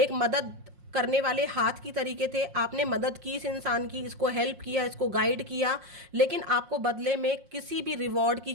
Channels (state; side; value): late; left; 5.6 ms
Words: मदद करने वाले हाथ की तरीके थे। आपने मदद की इस इंसान की, इसको हेल्प किया, इसको गाइड किया, लेकिन आपको बदले में किसी भी रिवॉर्ड की